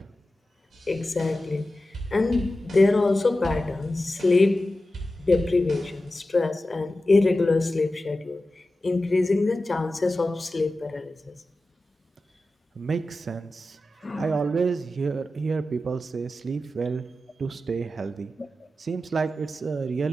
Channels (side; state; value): both; normal; correlation 0.93